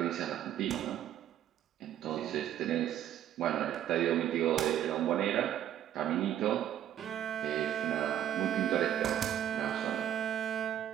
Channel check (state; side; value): quieter; left; 10.9 dB